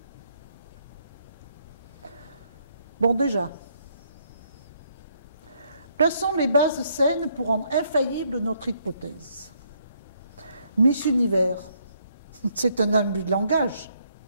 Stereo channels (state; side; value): inverted; both; correlation -0.71